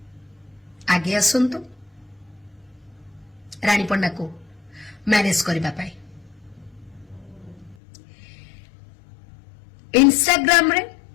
आगे आसंतु रानी पंडा को मैरेज करबा पाई इंस्टाग्राम रे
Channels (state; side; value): drops out; right; at 7.8 s